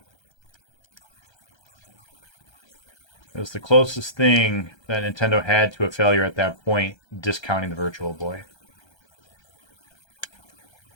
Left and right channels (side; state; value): right; late; 1.3 ms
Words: It was the closest thing that Nintendo had to a failure at that point, discounting the Virtual Boy.